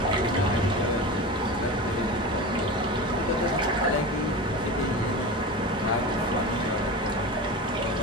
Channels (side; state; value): both; normal; correlation 0.27